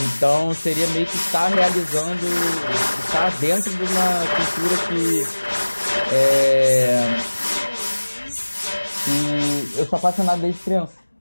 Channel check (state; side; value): inverted; both; correlation -1.00